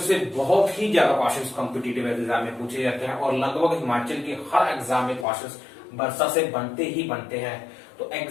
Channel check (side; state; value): right; drops out; at 5.2 s